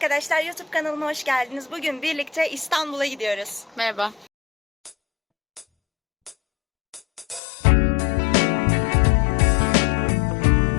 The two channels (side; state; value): right; drops out; at 7.4 s